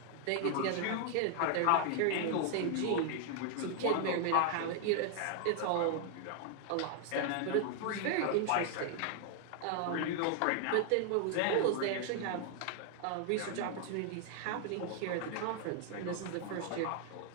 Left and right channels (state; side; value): different; both; correlation 0.00